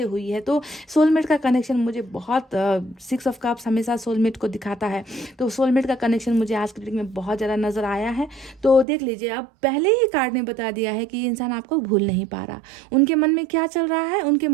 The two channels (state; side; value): drops out; left; at 8.8 s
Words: हुई है। तो सोलमेट का कनेक्शन मुझे बहुत 6 ऑफ कप्स हमेशा सोलमेट को दिखाता है, तो सोलमेट का कनेक्शन मुझे आज की रीडिंग में बहुत ज़्यादा नज़र आया है। तो देख लीजिए, अब पहले ही कार्ड ने बता दिया है कि ये इंसान आपको भूल नहीं पा रहा। उनके मन में क्या चल रहा है, उनके